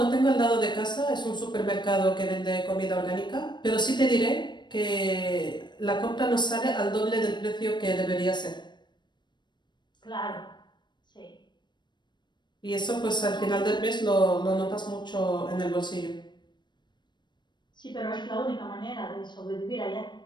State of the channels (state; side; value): late; right; 0.22 ms